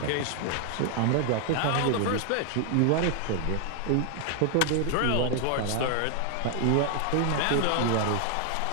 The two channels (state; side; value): different; both; correlation 0.00